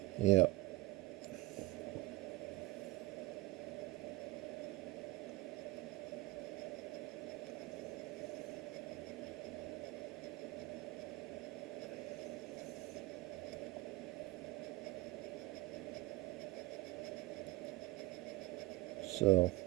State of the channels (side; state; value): left; quieter; 19.7 dB